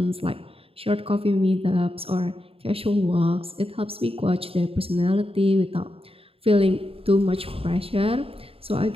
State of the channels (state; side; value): late; left; 0.27 ms